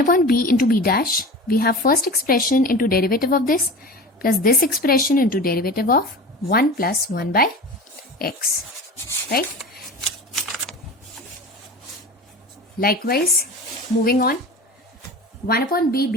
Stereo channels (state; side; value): normal; both; correlation 0.34